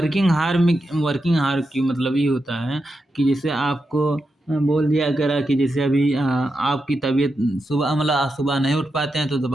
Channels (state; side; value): normal; both; correlation 0.87